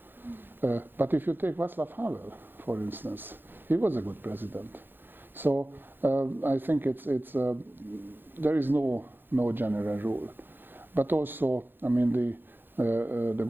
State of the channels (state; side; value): late; left; 0.098 ms